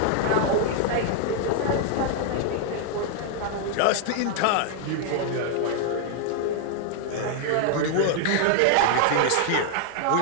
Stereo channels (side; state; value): both; different; correlation 0.00